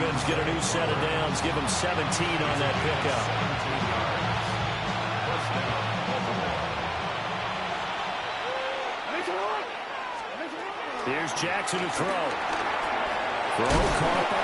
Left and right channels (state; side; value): identical; both; correlation 1.00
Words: get a new set of downs, give them 17 on that pickup. Here's Jackson to throw. Throw caught